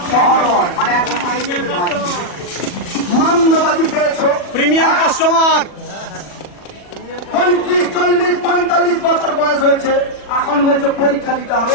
শহর হয়, মানে এখন মান্যবাজি পেয়েছো, প্রিমিয়াম কাস্টমার। 35, 40, 45 বছর বয়স হয়েছে, এখন বলছে পরীক্ষা দিতে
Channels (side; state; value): right; late; 40 ms